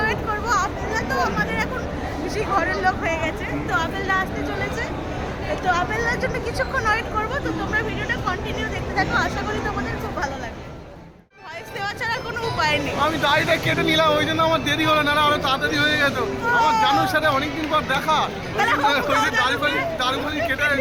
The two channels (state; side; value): identical; both; correlation 1.00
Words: ওয়েট করবো। আপেলদা তো আমাদের এখন বেশি ঘরের লোক হয়ে গেছে, তো আপেলদা আসতে চলেছে। তো আপেলদার জন্য কিছুক্ষণ ওয়েট করবো। তো তোমরা ভিডিওটা কন্টিনিউ দেখতে থাকো, আশা করি তোমাদের খুব ভালো লাগবে। ভয়েস দেওয়া ছাড়া কোনো উপায় নেই। আমি দাড়িটা কেটে নিলাম, ওই জন্য আমার দেরি হলো, না আরো তাড়াতাড়ি হয়ে যেত। আমার জানুর সাথে অনেকদিন পর দেখা, দাড়ি কেটে